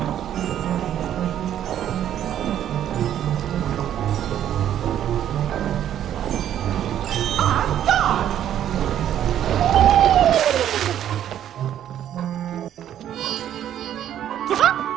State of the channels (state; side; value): quieter; left; 10.7 dB